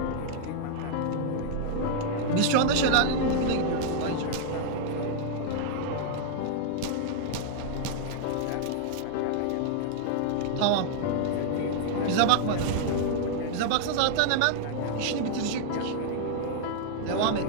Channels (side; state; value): both; different; correlation -0.01